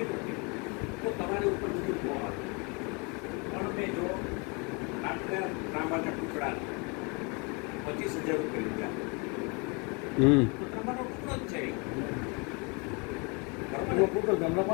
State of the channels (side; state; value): right; quieter; 31.5 dB